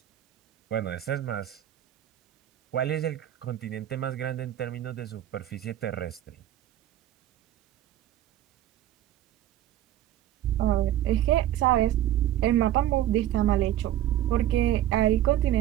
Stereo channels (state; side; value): quieter; left; 12.6 dB